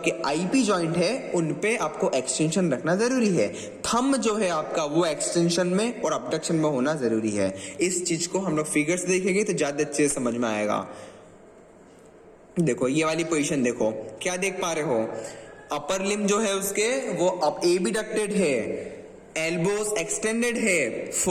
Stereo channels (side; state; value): both; identical; correlation 1.00